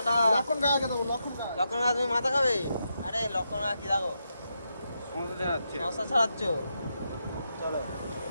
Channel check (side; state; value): both; inverted; correlation -0.84